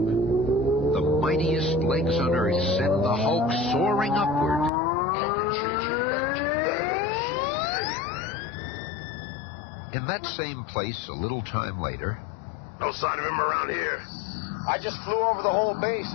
mightiest legs on Earth send the Hulk soaring upward. I've been changing back to that. In that same place, a little time later... No sign of him around here. I just flew over the whole base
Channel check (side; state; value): right; drops out; at 4.7 s